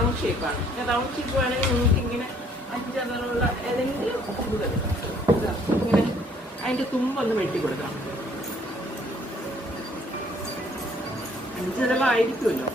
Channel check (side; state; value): both; normal; correlation 0.62